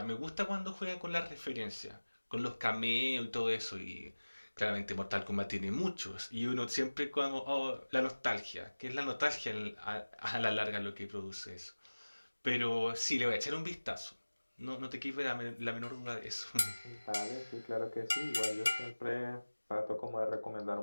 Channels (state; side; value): inverted; both; correlation -1.00